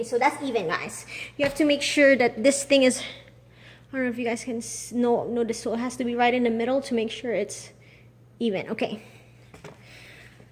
so that's even, guys. You have to make sure that this thing is, I don't know if you guys can notice, so it has to be right in the middle to make sure it's even. Okay.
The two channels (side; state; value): both; identical; correlation 1.00